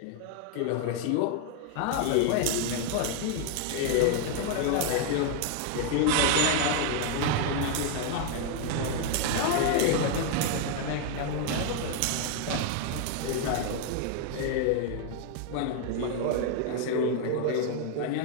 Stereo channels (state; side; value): different; both; correlation 0.01